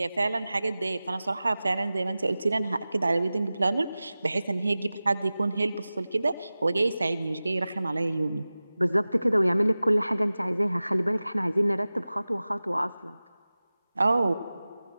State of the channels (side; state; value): both; inverted; correlation -0.97